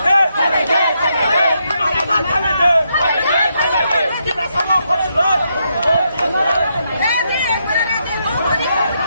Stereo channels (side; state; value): both; inverted; correlation -0.80